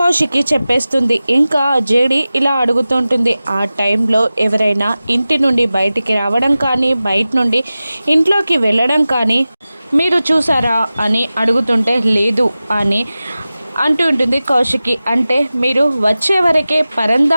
చెప్పేస్తుంది. ఇంకా జేడి ఇలా అడుగుతుంటుంది, ఆ టైంలో ఎవరైనా ఇంటి నుండి బయటికి రావడం కానీ బయట నుండి ఇంట్లోకి వెళ్ళడం కానీ మీరు చూసారా అని అడుగుతుంటే లేదు అని అంటూ ఉంటుంది కౌశికి. అంటే మీరు వచ్చే వరకే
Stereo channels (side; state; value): both; inverted; correlation -0.96